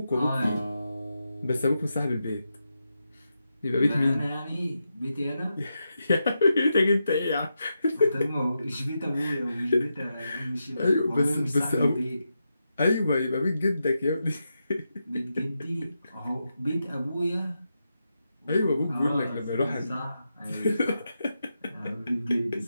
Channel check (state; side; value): inverted; both; correlation -0.87